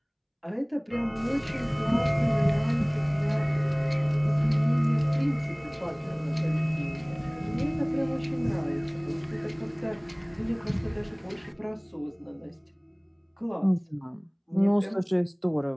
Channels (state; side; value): identical; both; correlation 1.00